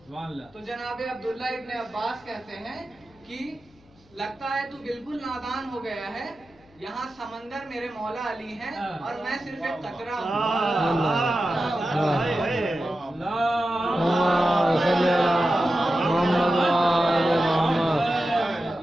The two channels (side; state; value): left; noise; hum, 29 dB below the sound